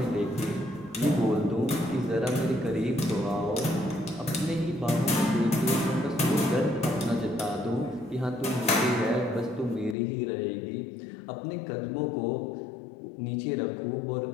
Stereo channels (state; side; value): drops out; right; at 10.0 s